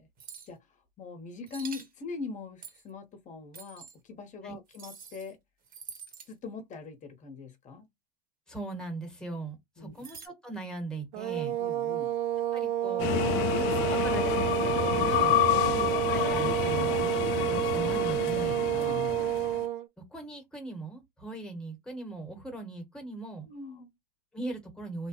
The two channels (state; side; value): normal; both; correlation 0.16